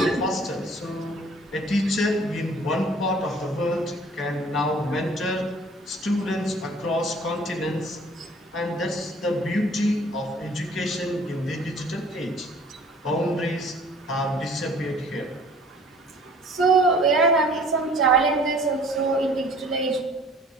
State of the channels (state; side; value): normal; both; correlation 0.52